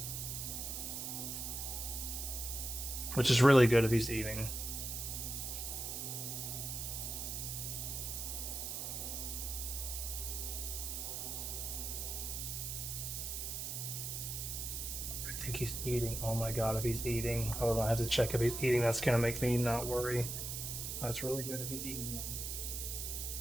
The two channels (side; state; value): right; noise; hiss, 4 dB below the sound